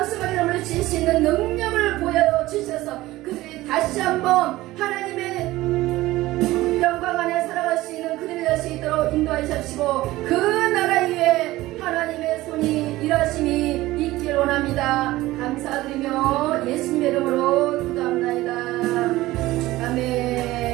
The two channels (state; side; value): quieter; left; 17.5 dB